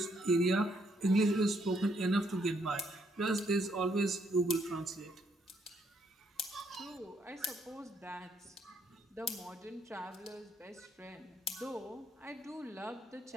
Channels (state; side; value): normal; both; correlation 0.72